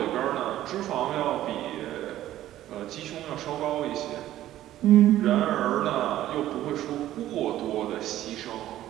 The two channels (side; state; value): left; quieter; 13.5 dB